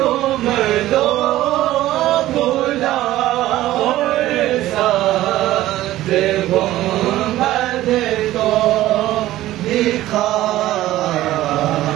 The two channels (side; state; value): left; quieter; 15.2 dB